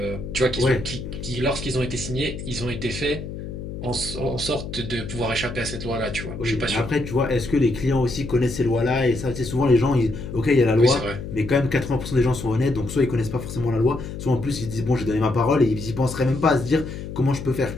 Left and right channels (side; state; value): left; noise; hum, 8 dB below the sound